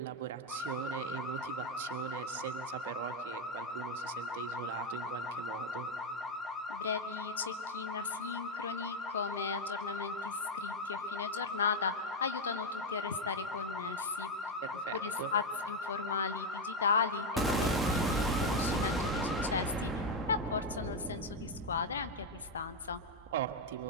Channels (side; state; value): both; normal; correlation 0.06